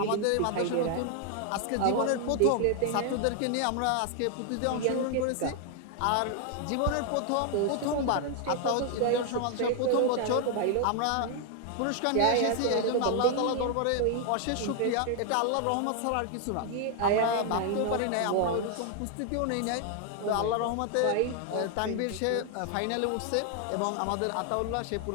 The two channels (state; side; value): different; both; correlation 0.00